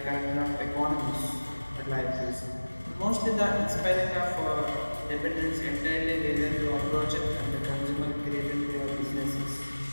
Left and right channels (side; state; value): both; inverted; correlation -1.00